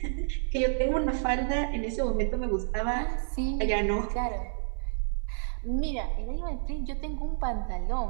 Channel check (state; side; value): silent; left; 58 dB below the other